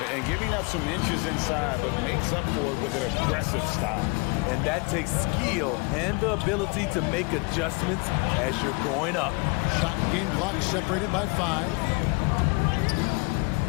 And giving up some inches inside, but makes up for it with an aggressive style. And that takes skill and the ability to make adjustments as you're going up. Shot and game clock separated by 5.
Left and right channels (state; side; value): quieter; right; 29.6 dB